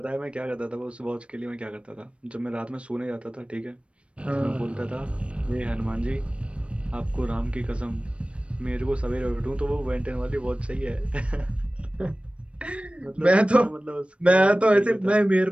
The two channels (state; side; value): late; left; 0.060 ms